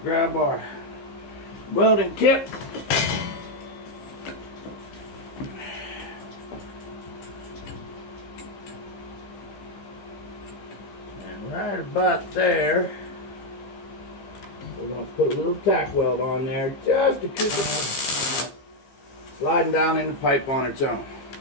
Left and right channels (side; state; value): right; late; 15 ms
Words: grab our welding tip. And right about there, we're going to put a little tack weld on there just to keep it sliding down in the pipe on its own.